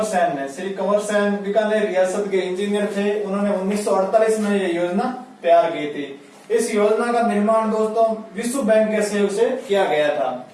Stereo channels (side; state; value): both; identical; correlation 1.00